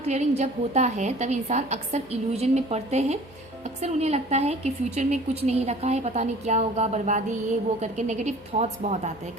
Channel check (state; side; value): normal; both; correlation 0.47